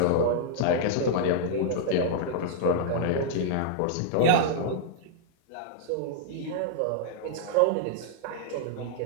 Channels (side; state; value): both; different; correlation -0.01